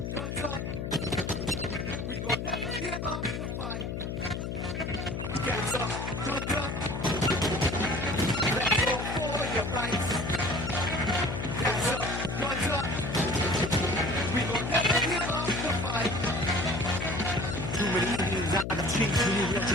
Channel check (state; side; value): noise; left; hum, 4 dB below the sound